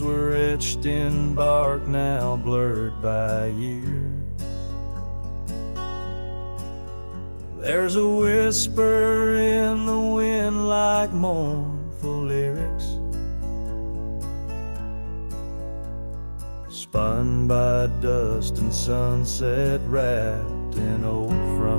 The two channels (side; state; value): both; inverted; correlation -1.00